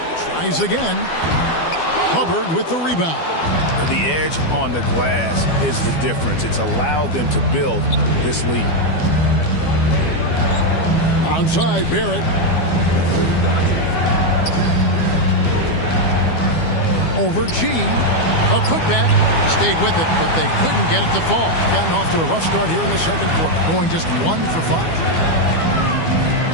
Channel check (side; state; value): right; late; 12 ms